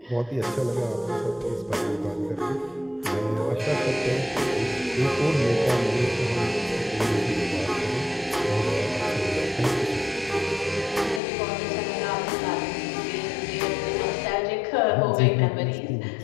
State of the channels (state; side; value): drops out; right; at 11.2 s